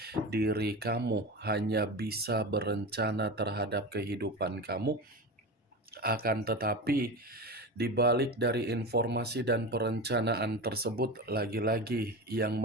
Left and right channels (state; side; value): normal; both; correlation 0.25